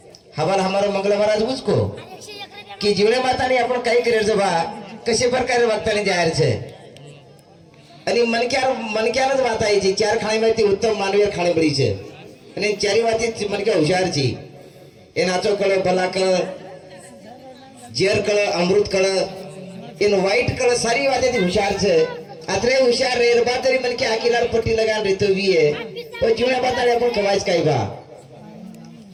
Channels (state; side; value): identical; both; correlation 1.00